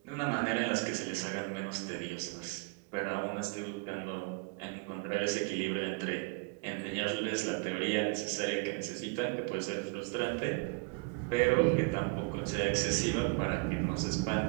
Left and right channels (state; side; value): quieter; left; 31.5 dB